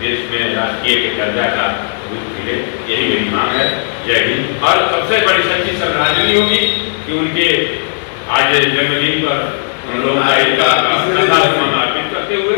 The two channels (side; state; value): right; silent; digital silence